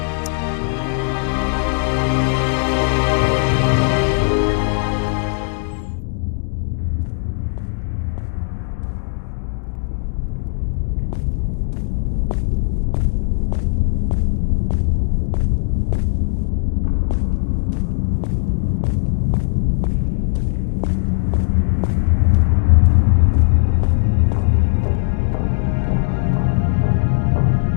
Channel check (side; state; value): right; silent; digital silence